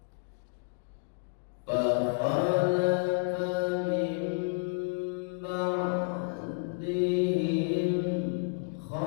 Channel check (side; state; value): right; silent; digital silence